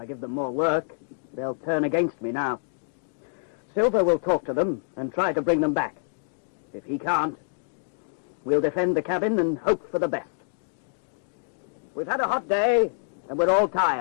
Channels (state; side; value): silent; right; digital silence